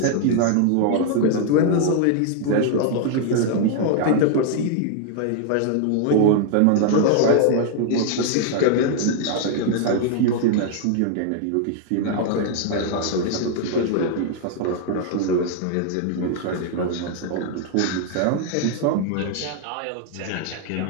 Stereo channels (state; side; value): different; both; correlation 0.00